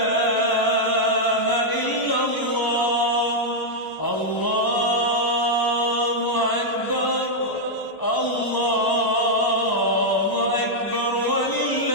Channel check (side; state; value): right; late; 1.0 ms